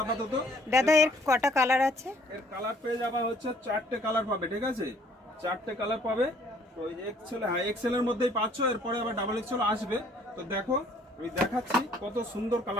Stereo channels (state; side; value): normal; both; correlation 0.60